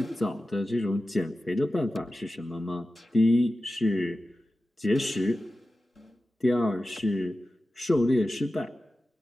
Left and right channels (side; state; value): both; normal; correlation 0.94